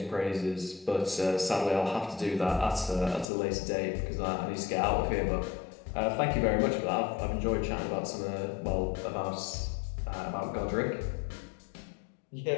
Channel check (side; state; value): right; drops out; at 3.2 s